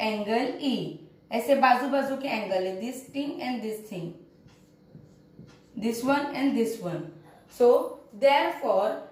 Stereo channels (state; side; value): identical; both; correlation 1.00